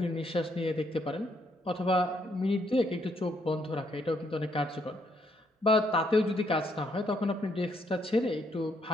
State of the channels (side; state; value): both; normal; correlation 0.72